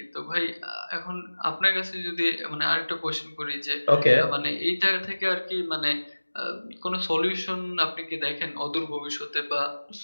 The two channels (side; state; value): both; inverted; correlation -1.00